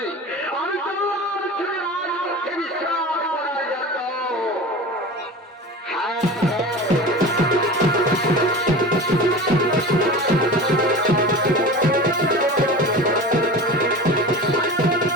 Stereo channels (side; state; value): both; normal; correlation 0.34